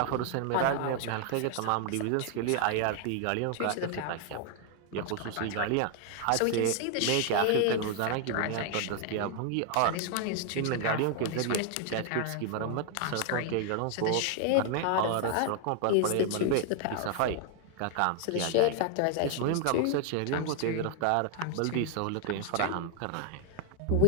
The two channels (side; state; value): both; different; correlation 0.00